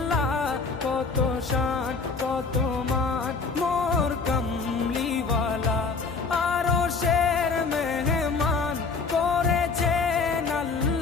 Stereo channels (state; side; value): quieter; right; 4.5 dB